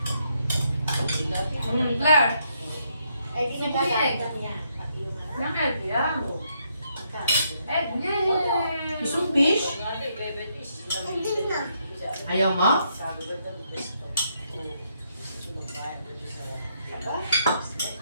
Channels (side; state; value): both; inverted; correlation -0.75